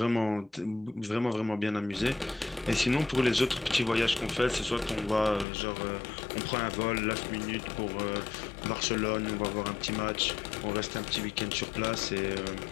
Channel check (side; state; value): right; drops out; at 5.5 s